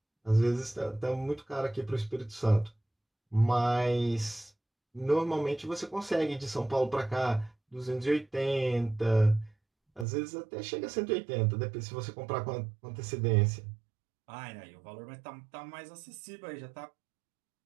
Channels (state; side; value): drops out; left; at 10.1 s